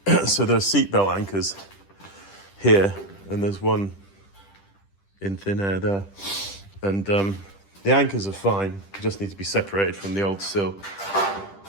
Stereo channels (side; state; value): right; late; 10 ms